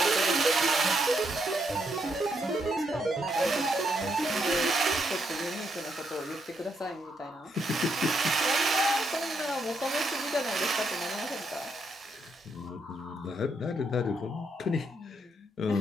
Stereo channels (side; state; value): both; normal; correlation 0.77